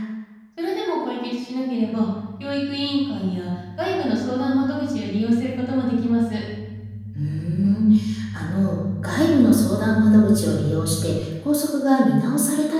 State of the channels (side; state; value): both; identical; correlation 1.00